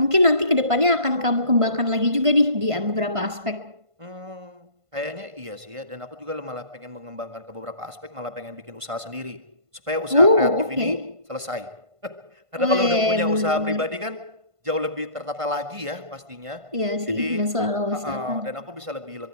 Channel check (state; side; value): late; left; 1.5 ms